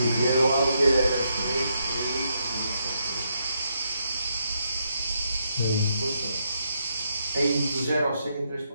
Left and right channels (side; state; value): both; inverted; correlation -0.79